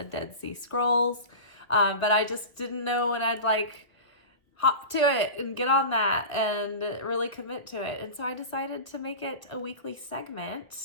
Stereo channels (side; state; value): right; late; 1.2 ms